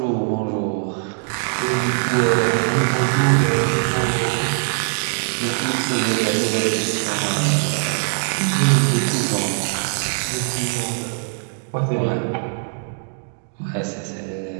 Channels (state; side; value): silent; left; digital silence